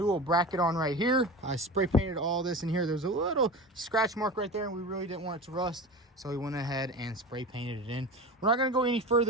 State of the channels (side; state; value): both; normal; correlation 0.30